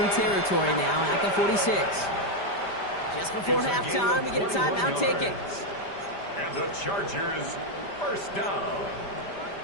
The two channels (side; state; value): right; late; 5.1 ms